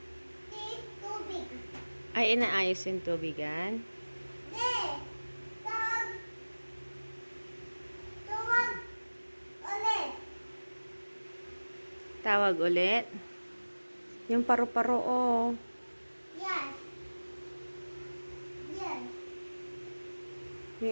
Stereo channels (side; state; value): both; inverted; correlation -1.00